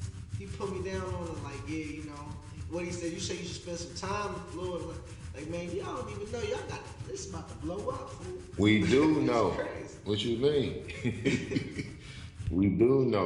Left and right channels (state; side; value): identical; both; correlation 1.00